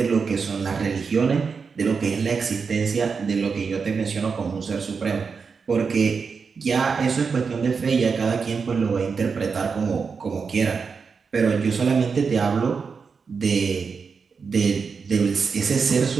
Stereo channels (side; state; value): left; quieter; 5.4 dB